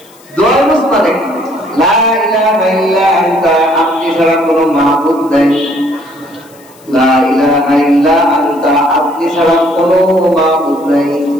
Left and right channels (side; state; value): left; noise; hiss, 27 dB below the sound